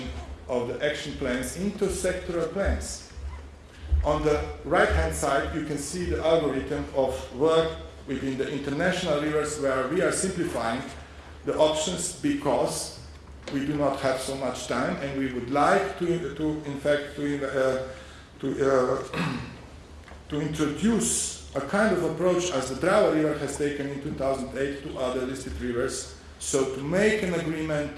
of the action plans into sectoral plans. On the right-hand side, you can see the algorithm of work within the international rivers, where we are simplifying the options because we do not have so much time, and we would like to introduce a kind of approach as the Drava River has taken in 2008 to other listed rivers. So to make an agreement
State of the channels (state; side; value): identical; both; correlation 1.00